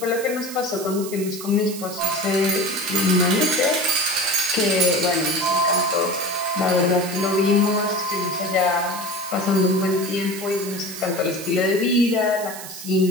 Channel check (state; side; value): noise; right; hiss, 12 dB below the sound